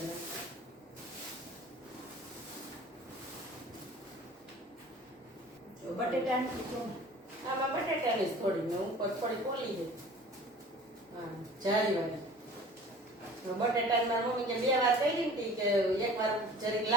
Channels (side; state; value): both; normal; correlation 0.45